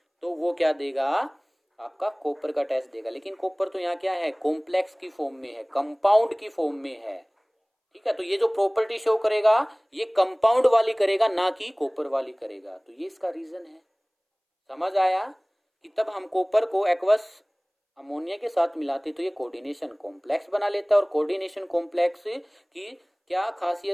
तो वो क्या देगा, आपका कॉपर का टेस्ट देगा। लेकिन कॉपर तो यहाँ क्या है, कॉम्प्लेक्स की फॉर्म में है, कंपाउंड की फॉर्म में है, ठीक है। तो ये जो प्रॉपर्टी शो करेगा ये कंपाउंड वाली करेगा, ना कि कॉपर वाली करेगा। तो ये इसका रीजन है। समझ आया कि तब हम कॉपर को एक्वस अमोनिया के साथ मिलाते तो ये कोऑर्डिनेशन कॉम्प्लेक्स बना लेता है। और कोऑर्डिनेशन कॉम्प्लेक्स की क्या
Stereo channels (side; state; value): both; identical; correlation 1.00